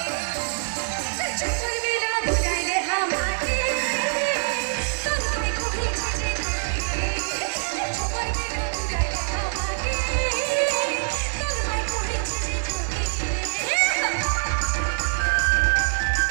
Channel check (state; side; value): silent; left; digital silence